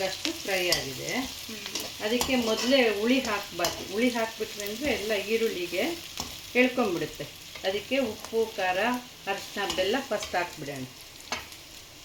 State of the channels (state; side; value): identical; both; correlation 1.00